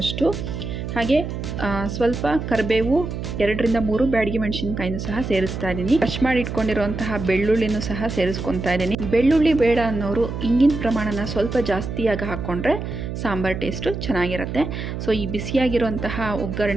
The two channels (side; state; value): right; noise; hum, 6 dB below the sound